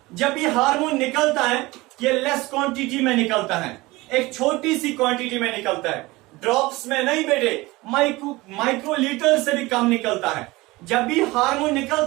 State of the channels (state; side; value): quieter; left; 21.1 dB